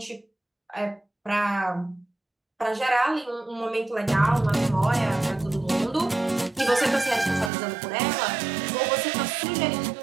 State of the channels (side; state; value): left; drops out; at 7.5 s